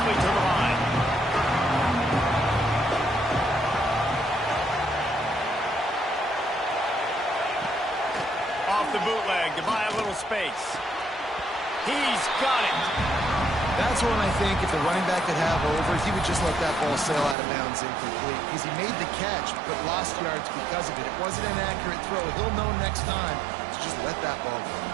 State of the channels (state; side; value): drops out; left; at 17.4 s